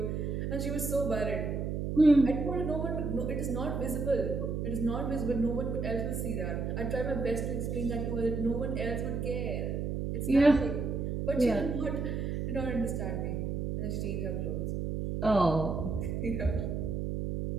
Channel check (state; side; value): noise; right; hum, 2 dB below the sound